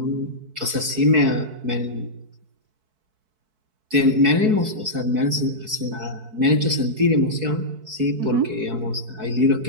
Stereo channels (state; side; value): late; left; 4.6 ms